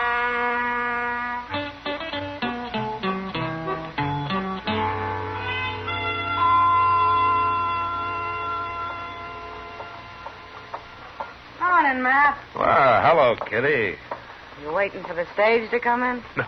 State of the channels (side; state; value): both; identical; correlation 1.00